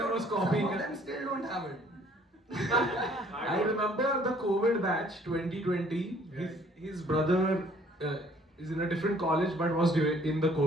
was copying. Some of them still don't have it. I remember the COVID batch 2020. His brother is in a different college but was in the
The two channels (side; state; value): both; normal; correlation 0.59